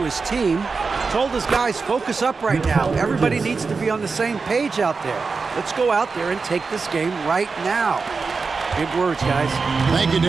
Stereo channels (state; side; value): quieter; left; 4.6 dB